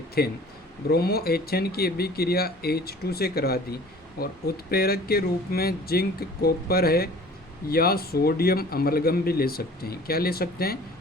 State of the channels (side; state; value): both; normal; correlation 0.47